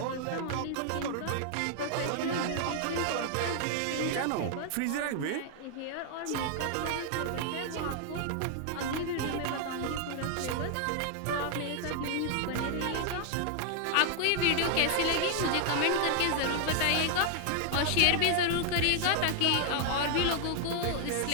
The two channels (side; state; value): both; different; correlation 0.00